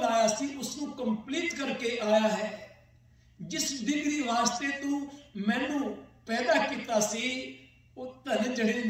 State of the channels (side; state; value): both; identical; correlation 1.00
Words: आया सी उसको कंप्लीट करके आया है। जिस डिग्री वास्ते तू मैनू पैदा किया सी, वो धन जड़े